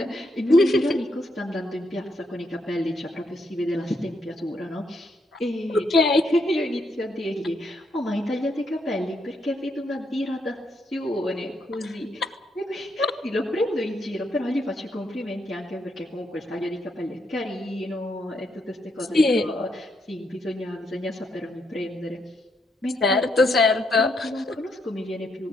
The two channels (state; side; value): normal; both; correlation 0.77